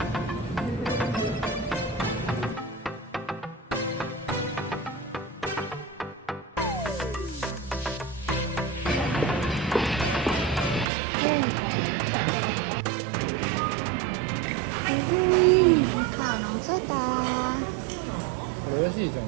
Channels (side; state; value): left; drops out; at 10.9 s